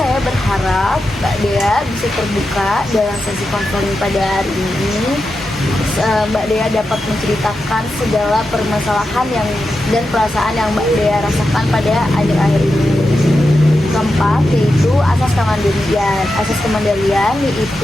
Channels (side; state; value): both; normal; correlation 0.89